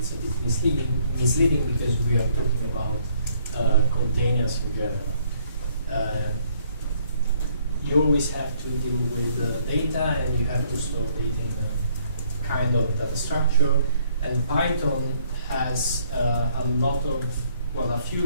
a bit misleading because we are talking about containers in general. You always have to deal with data, and you have to store data in a kind of data structure. And Python has a lot of, well, a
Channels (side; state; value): both; inverted; correlation -0.65